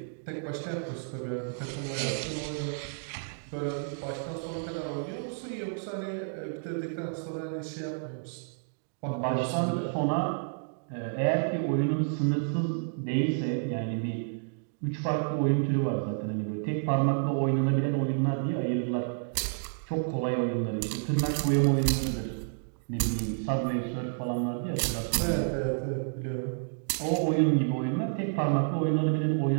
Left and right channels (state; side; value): silent; left; digital silence